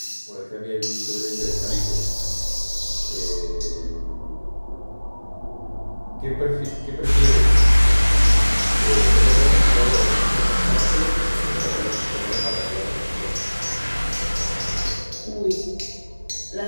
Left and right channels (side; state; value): both; inverted; correlation -1.00